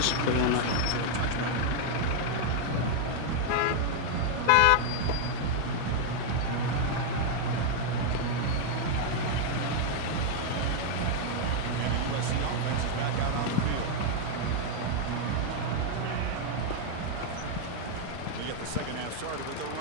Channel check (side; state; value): both; different; correlation 0.00